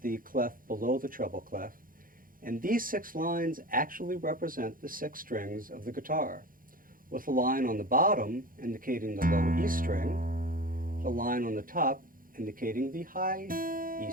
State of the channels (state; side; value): late; left; 0.41 ms